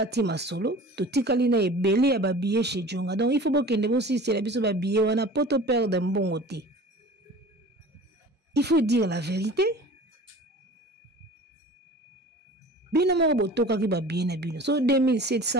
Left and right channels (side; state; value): both; normal; correlation 0.41